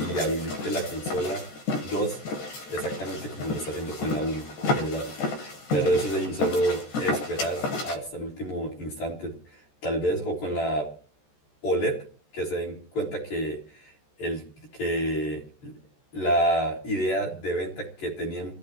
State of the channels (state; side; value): late; right; 14 ms